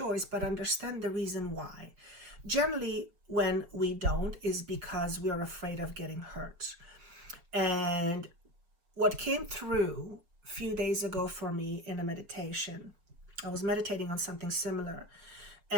but understand the reason why. Generally, when we don't is because we are afraid of getting hurt. And what came through a few days ago for me in a meditation, I was meditating on something similar.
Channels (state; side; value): late; left; 5.9 ms